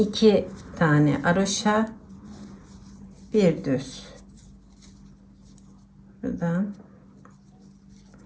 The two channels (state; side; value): identical; both; correlation 1.00